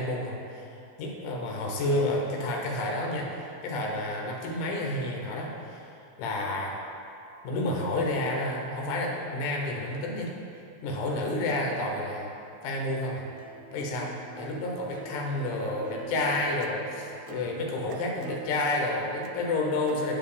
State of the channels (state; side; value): late; right; 17 ms